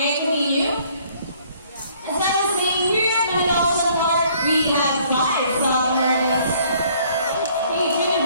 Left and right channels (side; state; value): both; inverted; correlation -0.61